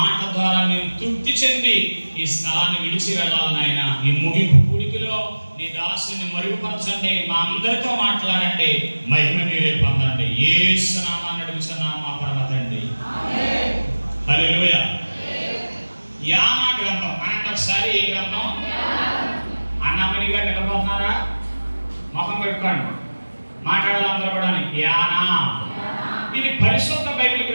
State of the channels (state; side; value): inverted; both; correlation -1.00